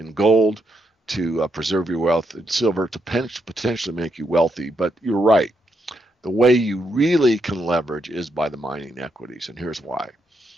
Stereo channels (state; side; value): normal; both; correlation 0.80